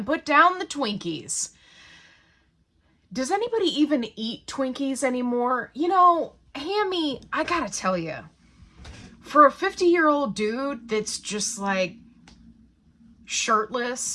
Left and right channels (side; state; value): both; identical; correlation 1.00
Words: put down the Twinkies. Does anybody even eat Twinkies anymore? You know, Hammy, I gotta tell you, for a 50-year-old dude that's just like